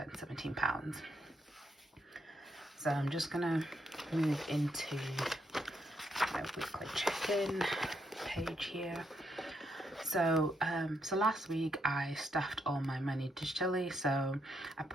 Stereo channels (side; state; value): both; normal; correlation 0.78